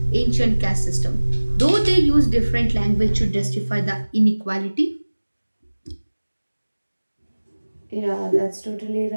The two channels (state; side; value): inverted; both; correlation -1.00